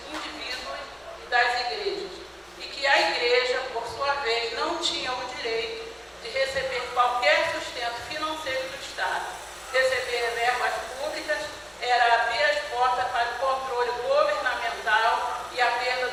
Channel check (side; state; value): both; identical; correlation 1.00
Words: indivíduos e das igrejas, e que a igreja, por sua vez, não tinha o direito de receber qualquer sustento financeiro do Estado. Receber verbas públicas era abrir as portas para o controle governamental e a perda